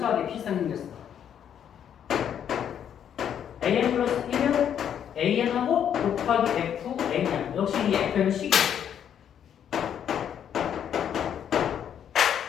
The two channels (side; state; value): right; quieter; 9.1 dB